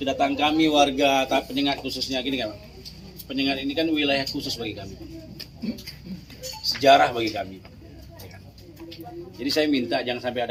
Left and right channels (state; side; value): identical; both; correlation 1.00